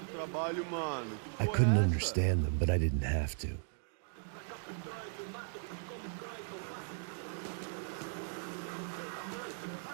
trabalho, mano. I Porra, couldn't essa? understand them, but I didn't have to.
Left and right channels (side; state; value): left; silent; digital silence